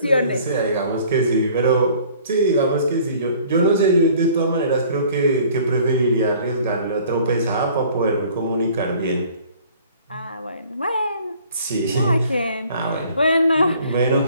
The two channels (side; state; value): both; inverted; correlation -0.53